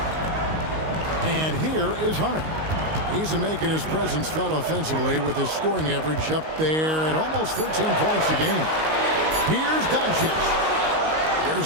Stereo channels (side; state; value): left; late; 19 ms